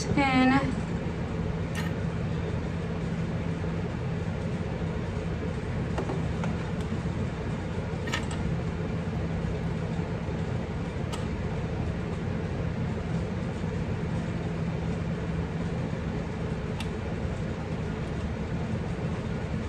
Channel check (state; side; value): identical; both; correlation 1.00